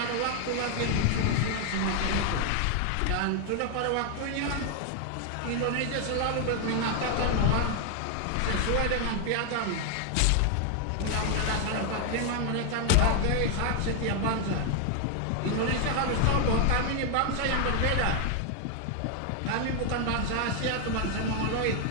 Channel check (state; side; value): different; both; correlation 0.00